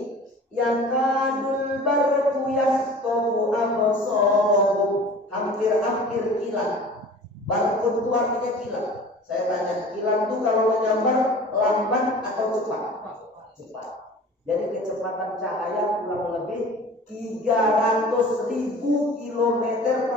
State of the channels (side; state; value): both; normal; correlation 0.42